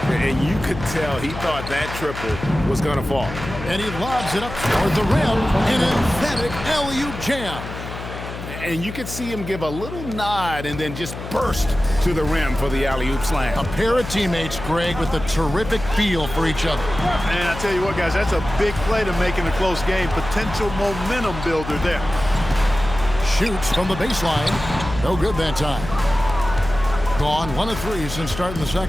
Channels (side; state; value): left; noise; hum, 10 dB below the sound